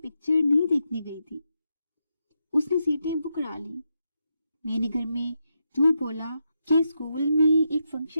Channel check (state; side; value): inverted; both; correlation -0.84